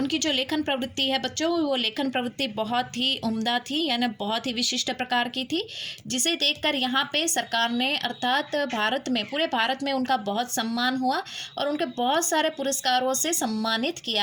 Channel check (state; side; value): identical; both; correlation 1.00